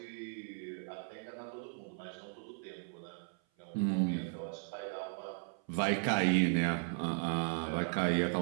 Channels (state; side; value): silent; left; 53 dB below the other